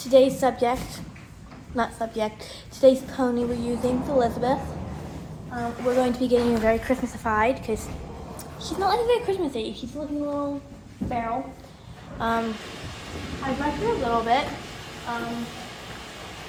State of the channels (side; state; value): both; identical; correlation 1.00